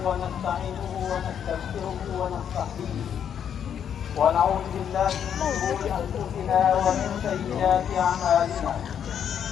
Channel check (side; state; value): right; quieter; 8.6 dB